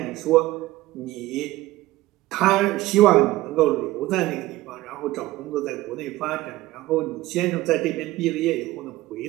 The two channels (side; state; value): left; quieter; 17.3 dB